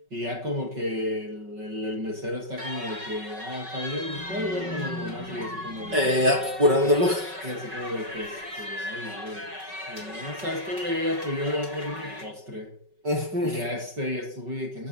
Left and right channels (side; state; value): left; late; 5.3 ms